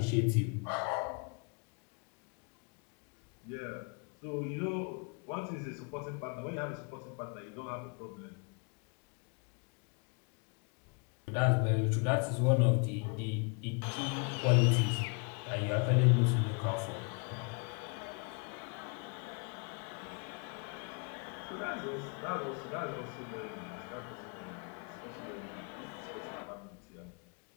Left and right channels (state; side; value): quieter; right; 35.9 dB